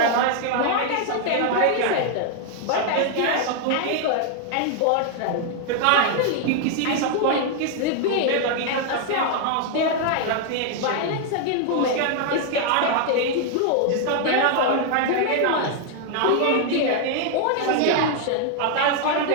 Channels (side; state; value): both; different; correlation 0.00